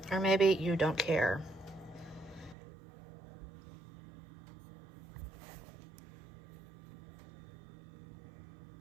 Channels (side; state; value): left; drops out; at 2.6 s